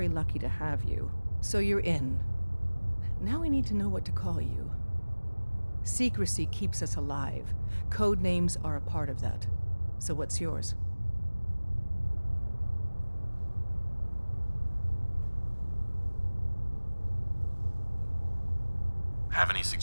lucky to have you. So you're in. Now we need to know what to call you. Secrecy keeps us alive. Code names are a part of that. So what's yours? Have any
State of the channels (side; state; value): both; inverted; correlation -1.00